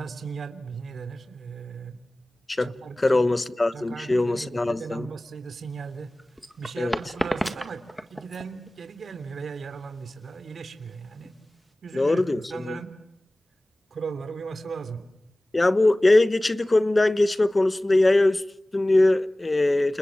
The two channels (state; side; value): normal; both; correlation 0.98